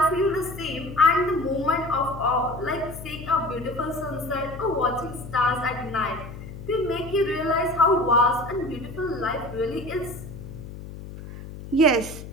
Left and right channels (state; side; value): noise; left; hum, 12 dB below the sound